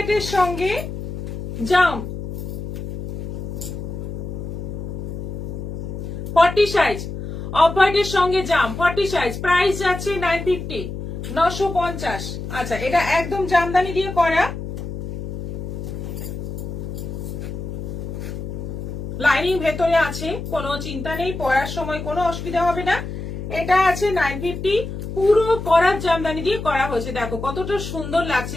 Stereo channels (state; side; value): noise; left; hum, 7 dB below the sound